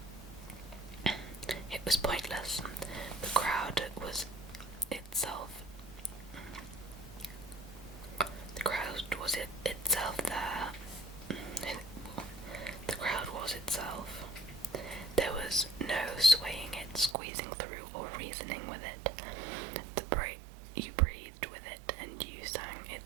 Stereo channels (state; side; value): drops out; left; at 17.2 s